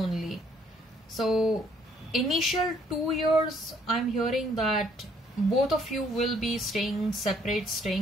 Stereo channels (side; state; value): both; normal; correlation 0.65